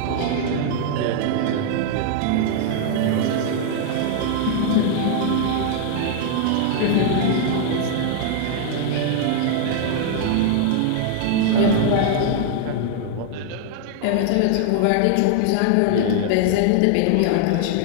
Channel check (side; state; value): both; different; correlation 0.00